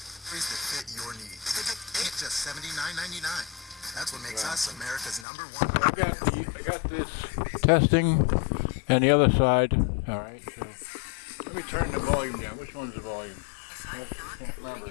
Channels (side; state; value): right; drops out; at 5.2 s